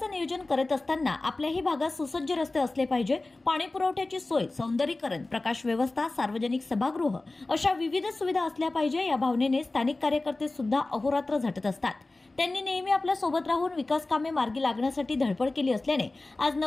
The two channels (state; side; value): quieter; right; 3.1 dB